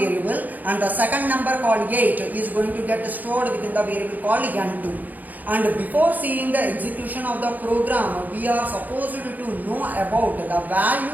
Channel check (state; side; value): late; left; 0.082 ms